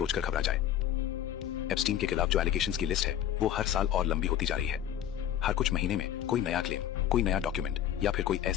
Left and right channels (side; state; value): right; quieter; 10.9 dB